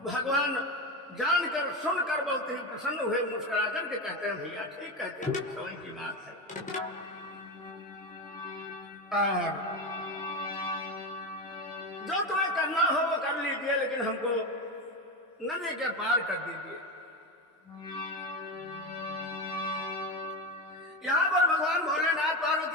भगवान जानकर सुनकर बहुत ही प्रसन्न हुए, मुस्कुरा करके कहते हैं भैया ठीक कहते हैं, समय की बात है। और जो तुम्हें करना हो वो कर लीजिए, लेकिन हमको नदी के पार कर दीजिए। यहां पर भगवान भोलेनाथ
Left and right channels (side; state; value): both; normal; correlation 0.18